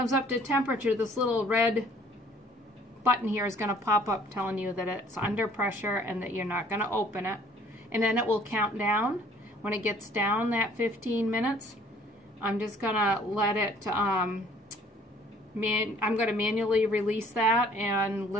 up to temperature, this little red button here is going to pop up telling you that it's under pressure and that you're not going to open it. And then it will count down. When it gets down that 15 minutes, I'm just going to let it, I'm going to manually release that and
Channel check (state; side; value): normal; both; correlation 0.57